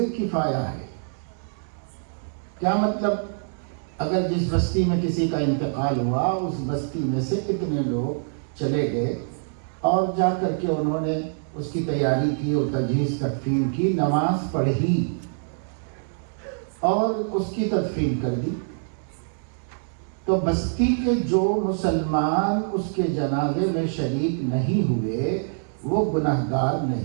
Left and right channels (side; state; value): left; silent; 62 dB below the other